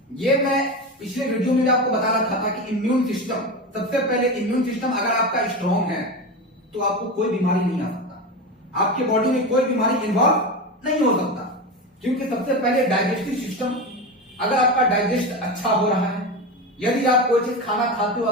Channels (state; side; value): normal; both; correlation 0.21